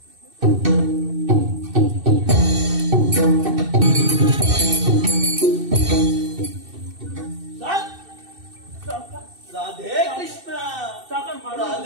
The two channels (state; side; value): late; left; 2.6 ms